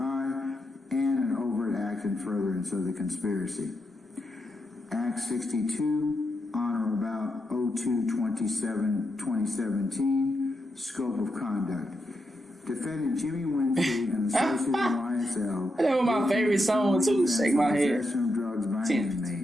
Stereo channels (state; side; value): normal; both; correlation 0.85